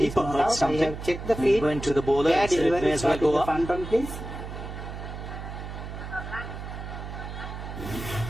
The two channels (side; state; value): right; noise; hum, 8 dB below the sound